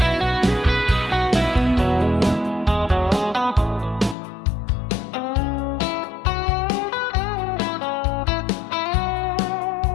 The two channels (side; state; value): right; drops out; at 4.2 s